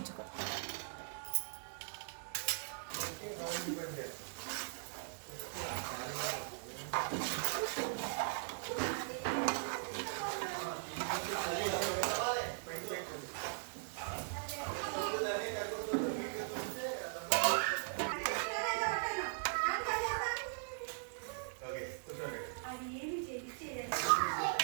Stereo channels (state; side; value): silent; left; digital silence